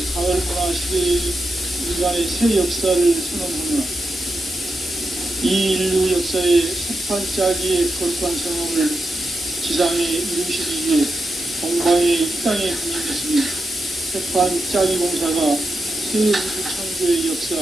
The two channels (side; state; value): both; normal; correlation 0.87